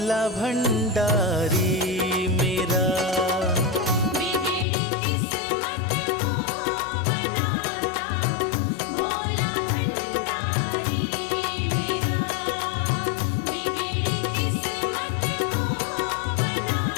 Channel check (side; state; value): right; drops out; at 4.7 s